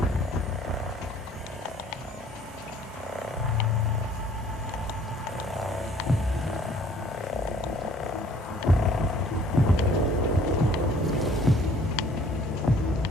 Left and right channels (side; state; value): both; normal; correlation 0.56